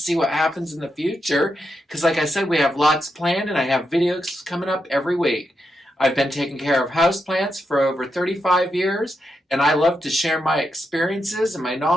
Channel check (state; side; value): normal; both; correlation 0.84